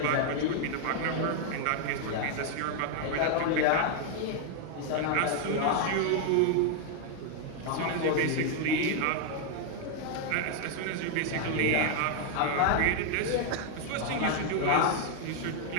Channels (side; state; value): both; different; correlation 0.00